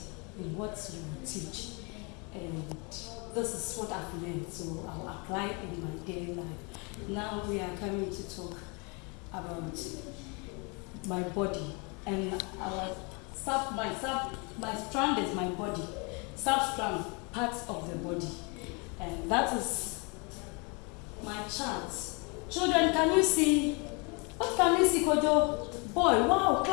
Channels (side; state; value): right; quieter; 31.8 dB